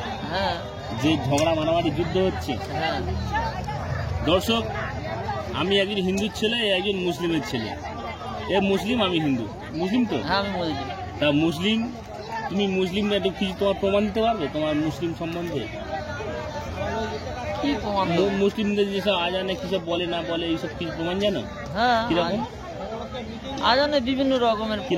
যে ঝগড়া মারামারি যুদ্ধ হচ্ছে। দর্শক, আমি একজন হিন্দুর ছেলে, একজন মুসলিমের ছেলে। এ মুসলিম, আমি হিন্দু। মুসলিম তো? তা মুসলিম, তুমি মুসলিম একটু কিছু তোমার প্রমাণ দিতে পারবে তোমার মুসলিম সম্বন্ধে? মুসলিমদের যেসব আজানে কিসব বলে না বলে এইসব কিছু প্রমাণ জানো? কিরকম আজানে বিভিন্ন রকমের,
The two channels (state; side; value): identical; both; correlation 1.00